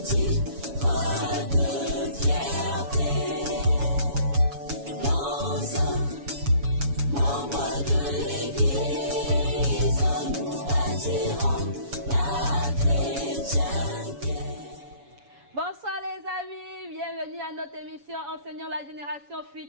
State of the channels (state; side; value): late; left; 7.1 ms